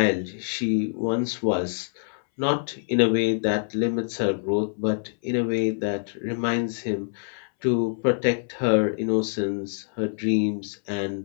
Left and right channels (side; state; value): right; silent; 61 dB below the other